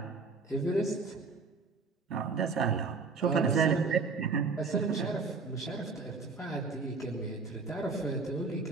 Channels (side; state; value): left; quieter; 4.4 dB